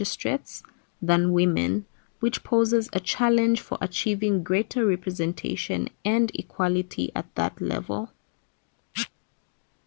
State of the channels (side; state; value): right; silent; digital silence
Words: than women, which poses a challenge for achieving greater representation and equality at that level.